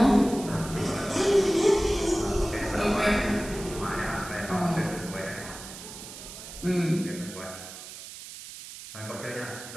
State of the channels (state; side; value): noise; right; hiss, 13 dB below the sound